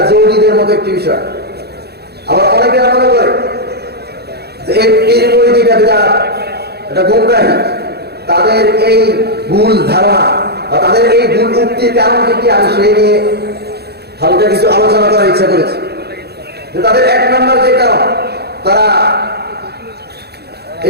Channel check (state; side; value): late; left; 0.47 ms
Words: জৌরিদের মতো একটি বিষয়, আবার অনেকে মনে করে যে এই পীর মুরিদি এটা গুমরাহি। তাদের এই ভুল ধারণা বা তাদের এই ভুল উক্তির কারণ কি আমি সেই নিয়ে হালকা কিছু আলোচনা করার ইচ্ছা করেছি। যে তাদের এক নম্বর যে কারণ, তারা